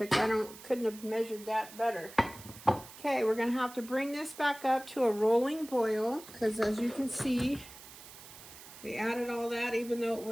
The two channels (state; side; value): noise; right; hiss, 17 dB below the sound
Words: Couldn't have measured that better. Okay, we're going to have to bring this back up to a rolling boil, because as you can see, we added all that. Even though it